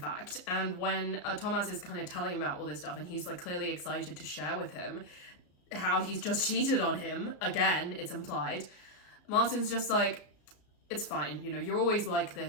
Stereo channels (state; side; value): late; right; 34 ms